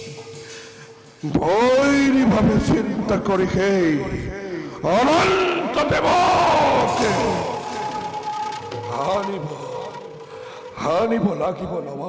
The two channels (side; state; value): both; identical; correlation 1.00